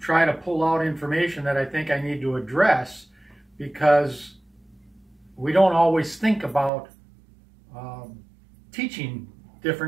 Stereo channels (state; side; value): drops out; left; at 6.7 s